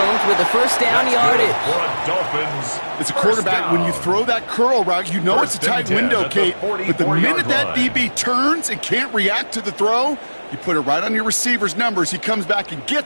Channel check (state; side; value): inverted; both; correlation -1.00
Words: with a first down yardage. As a quarterback, when you throw that curl route, you know it's a tight window, Kate. But the minute that DB turns and can't react to the throw, you put it right on your receiver's numbers. He comes back and